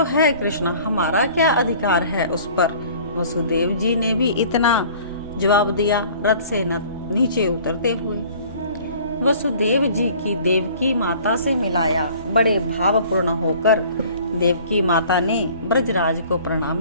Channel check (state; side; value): inverted; both; correlation -0.50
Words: है कृष्ण, हमारा क्या अधिकार है उस पर? वसुदेव जी ने भी इतना जवाब दिया, रथ से नीचे उतरते हुए। वसुदेव जी की देवकी माता से मिलाया। बड़े भावपूर्ण होकर देवकी माता ने ब्रजराज को